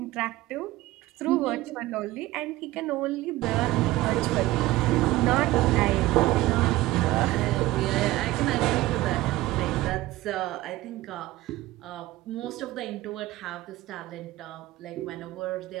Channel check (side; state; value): left; quieter; 17.4 dB